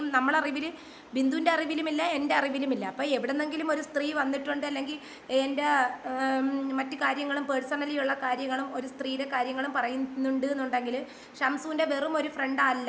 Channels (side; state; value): both; identical; correlation 1.00